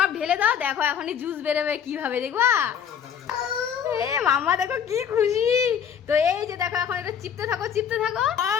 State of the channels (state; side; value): quieter; right; 8.1 dB